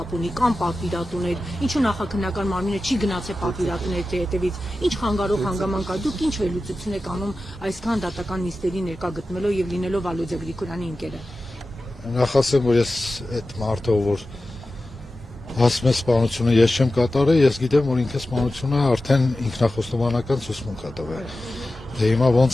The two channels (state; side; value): normal; both; correlation 0.94